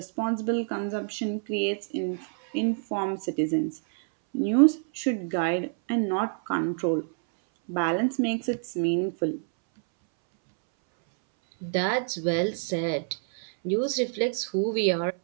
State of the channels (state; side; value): silent; left; 60 dB below the other